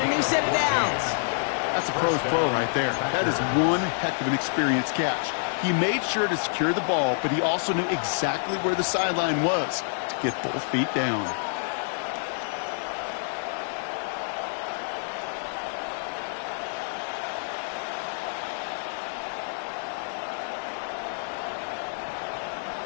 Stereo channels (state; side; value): silent; right; digital silence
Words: a new set of downs. That's a pro's pro right there. That is one heck of an experienced catch. He made sure to secure the ball, but he also knew exactly where the sideline was to get both feet down.